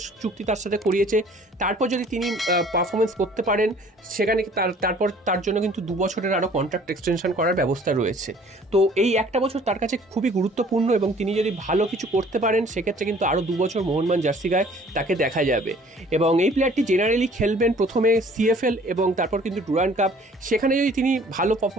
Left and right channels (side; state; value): both; normal; correlation 0.54